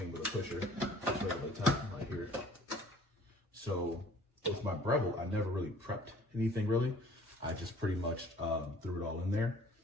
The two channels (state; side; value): normal; both; correlation 0.53